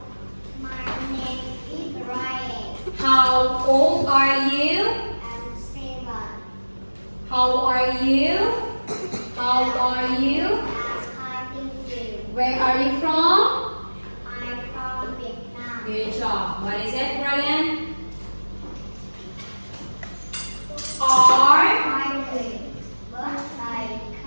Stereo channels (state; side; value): inverted; both; correlation -1.00